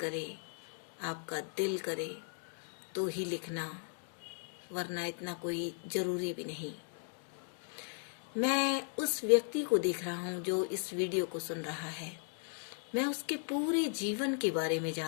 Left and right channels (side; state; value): right; silent; 53 dB below the other